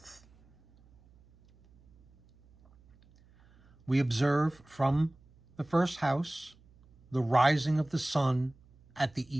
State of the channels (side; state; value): right; noise; hum, 29 dB below the sound